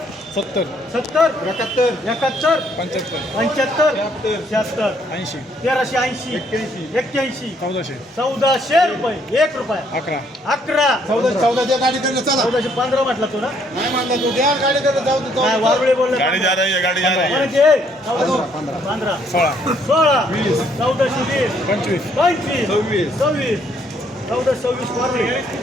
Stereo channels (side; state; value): both; normal; correlation 0.68